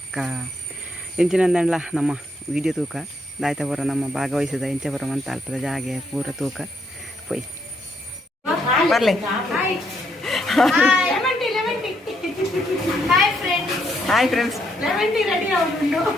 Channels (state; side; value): normal; both; correlation 0.75